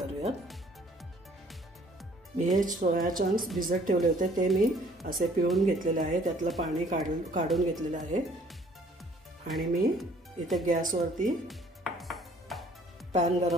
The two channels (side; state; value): both; normal; correlation 0.58